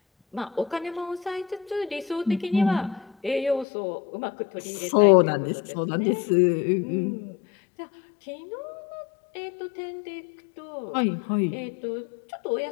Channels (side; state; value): right; drops out; at 3.7 s